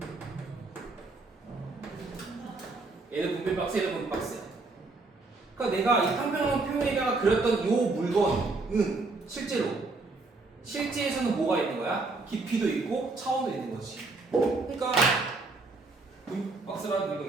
얘는 분필 박스, 얘는 분필 박스야. 그러니까 내가 이 평평한 표면에다가 그렸던 이 물건은 실제에서는 뭐가 있는 거야? 깊이도 있고 차원도 있는 거지. 그러니까 분필 박스라는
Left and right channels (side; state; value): left; quieter; 3.6 dB